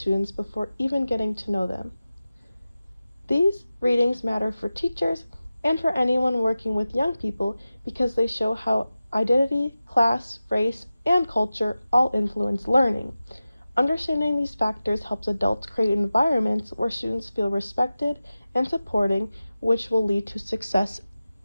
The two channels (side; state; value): both; inverted; correlation -0.95